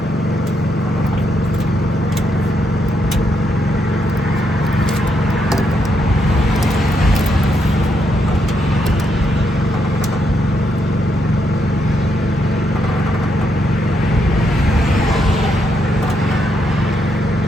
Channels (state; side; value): normal; both; correlation 0.78